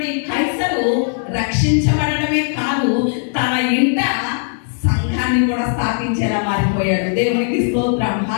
కైసరు రక్షించబడటమే కాదు, తన ఇంట సంఘాన్ని కూడా స్థాపించేలా మారిపోయాడు. దేవునికి స్తోత్రం,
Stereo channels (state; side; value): silent; right; 61 dB below the other